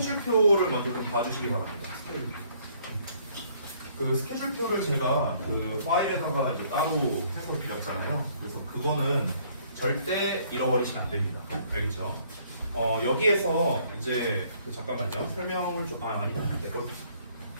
먼저 좀 봐주시기 바랍니다. 스케줄표. 그 스케줄표를 제가 그 파일에다가 이제 따로 해서 드렸잖아요. 그래서 그거는 절대 잃어버리시면 안 됩니다. 알겠죠? 여기에서 이제 잠깐만요. 설명을 좀 아니다. 내 걸.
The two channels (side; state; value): both; inverted; correlation -0.63